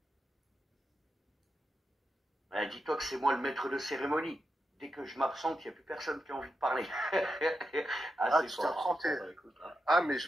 Dis-toi que c'est moi le maître de cérémonie. Dès que je m'absente, il n'y a plus personne qui a envie de parler. Ah, c'est tu pas t'es grave. absenté. Bah, écoute, hein. Ah, mais je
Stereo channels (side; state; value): both; normal; correlation 0.88